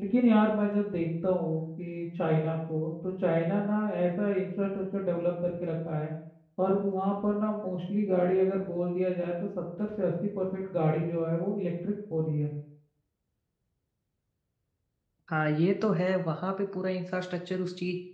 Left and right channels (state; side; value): identical; both; correlation 1.00